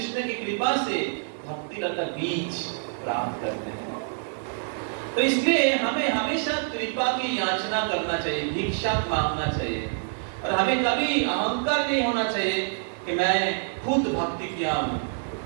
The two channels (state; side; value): silent; left; digital silence